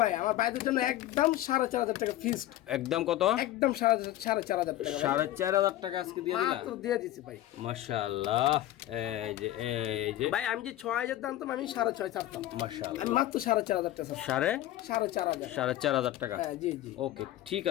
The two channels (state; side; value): quieter; right; 14.3 dB